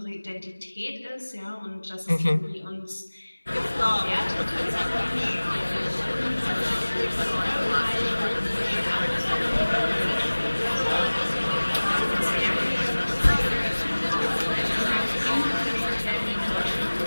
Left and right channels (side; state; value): both; inverted; correlation -1.00